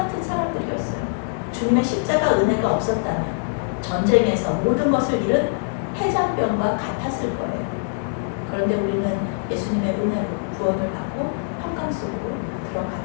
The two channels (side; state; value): right; silent; digital silence